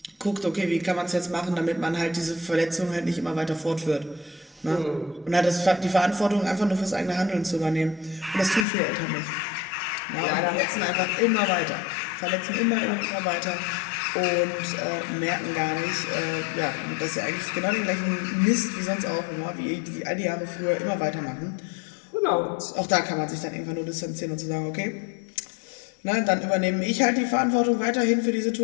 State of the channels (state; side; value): drops out; right; at 8.7 s